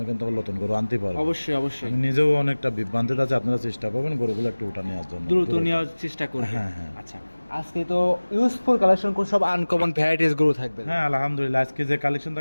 কিন্তু আবার নতুন গরু আনতে পারবো। অবশ্যই অবশ্যই, আমি নিজেও অনেকটা বিভ্রান্তিতে আছে, আপনারা চেষ্টা করবেন গরুগুলো একটু উঠা নেওয়ার জন্য, দ্রুত নেওয়ার চেষ্টা করবেন। হ্যাঁ হ্যাঁ। আচ্ছা, আজকে তো ইউজফুল কালেকশন কোন সব আনকমন ভ্যারাইটিস গরু থাকবে। হ্যাঁ আলহামদুলিল্লাহ, আজকে যে কালেকশন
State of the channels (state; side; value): inverted; both; correlation -1.00